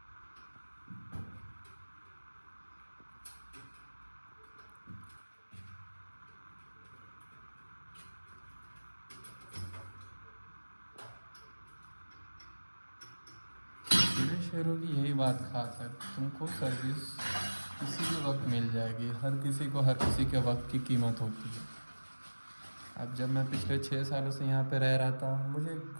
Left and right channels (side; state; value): both; inverted; correlation -1.00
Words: मेरे शेयरों की यही बात खास है, तुमको सर्विस किसी भी वक्त मिल जाएगी। हर किसी को हर किसी के वक्त की कीमत होती है। अब जब मैं पिछले 6 सालों से यहाँ पे रह रहा था, मुझे